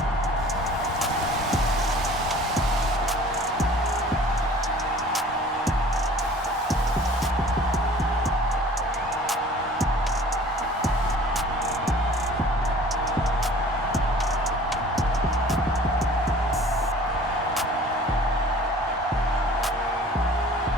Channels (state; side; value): normal; both; correlation 0.48